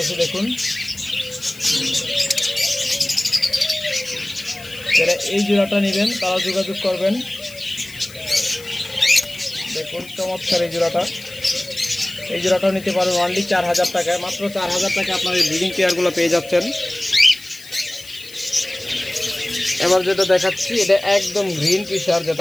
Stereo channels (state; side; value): noise; left; hiss, 19 dB below the sound